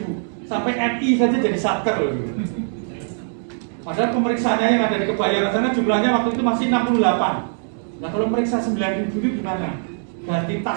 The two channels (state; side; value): silent; left; digital silence